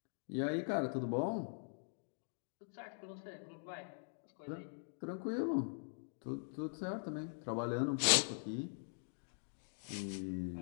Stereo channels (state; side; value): silent; right; digital silence